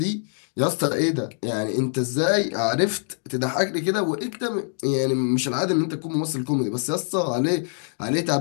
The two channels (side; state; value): right; silent; 61 dB below the other